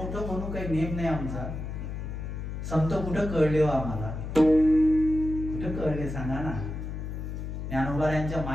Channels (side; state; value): left; noise; hum, 6 dB below the sound